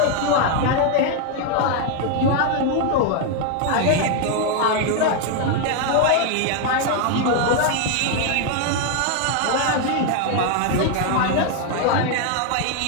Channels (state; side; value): different; both; correlation 0.01